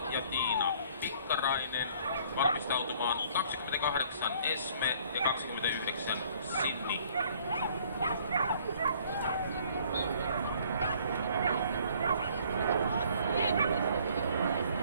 ja Tiina Pikkarainen valmistautumaan 28 Esme ja 29 Sydney.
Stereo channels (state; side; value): inverted; both; correlation -0.58